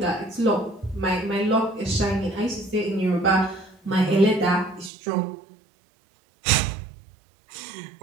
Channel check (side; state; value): left; drops out; at 4.9 s